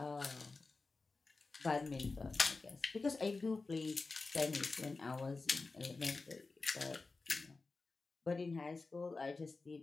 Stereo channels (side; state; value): right; quieter; 3.8 dB